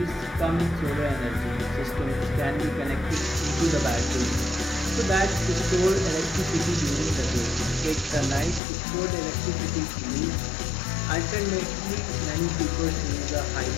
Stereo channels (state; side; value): drops out; right; at 8.6 s